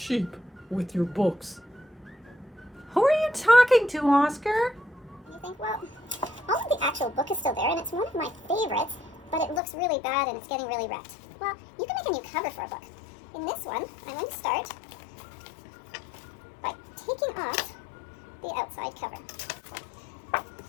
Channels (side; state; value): right; drops out; at 9.6 s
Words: with your books. Who are you talking to, Oscar? You think, well, all of the actual book is still there, and it's one of my favorites, but it looks really bad and it's getting really wrecked. Well, you can make a new cover for a book. In this one, I'm going to start by taking off the outside cover.